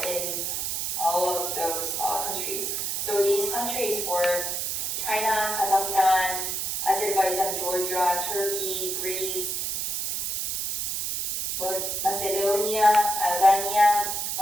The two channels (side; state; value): right; noise; hiss, 1 dB below the sound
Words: in all of those countries. So these countries were China, Kazakhstan, Azerbaijan, Georgia, Turkey, Greece, Macedonia, Albania,